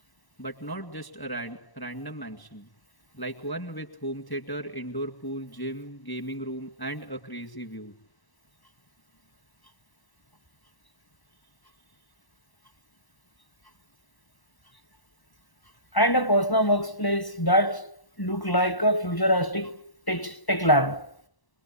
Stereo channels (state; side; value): late; right; 1.1 ms